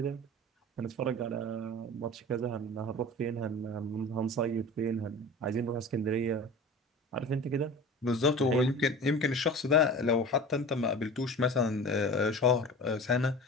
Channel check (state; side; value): normal; both; correlation 0.36